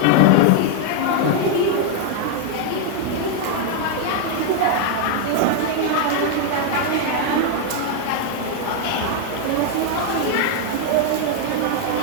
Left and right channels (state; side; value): different; both; correlation 0.00